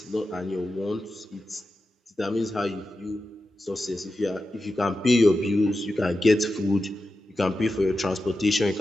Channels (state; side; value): normal; both; correlation 0.91